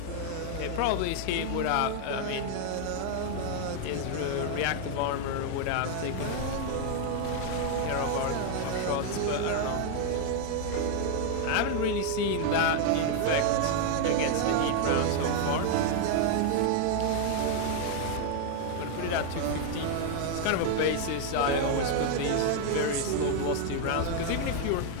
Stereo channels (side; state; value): both; different; correlation 0.00